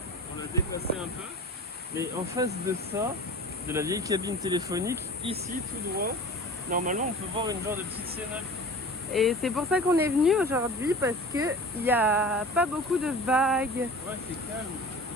on l'a déplacé un peu, mais en face de ça, de la vieille cabine téléphonique, ici tout droit, normalement on peut voir une genre de petite cénacle. Et c'est pour ça qu'on est venu aujourd'hui parce que il n'y a pas beaucoup de vagues. Ouais, c'est calme.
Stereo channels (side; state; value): both; normal; correlation 0.38